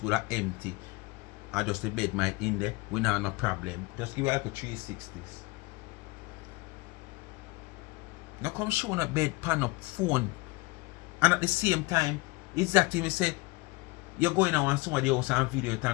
will be empty and just the bed might in there, we not have no problem. Just give you like a 360s. Now come show a bed pan up phone and at the same time, exactly me say you're going to want somebody else and video it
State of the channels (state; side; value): quieter; right; 24.1 dB